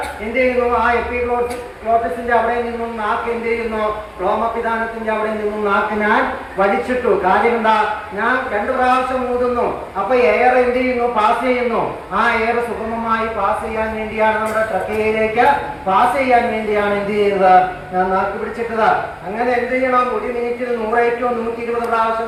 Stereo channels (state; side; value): identical; both; correlation 1.00